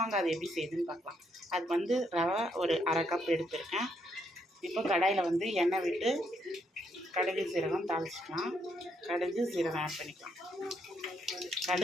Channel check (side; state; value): both; normal; correlation 0.75